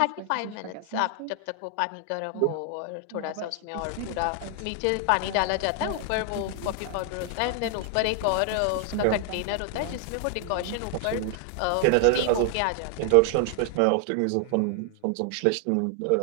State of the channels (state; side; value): different; both; correlation 0.00